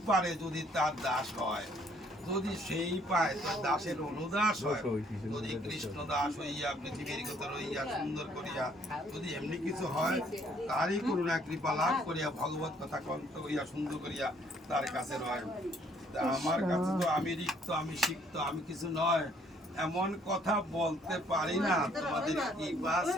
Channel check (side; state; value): both; normal; correlation 0.64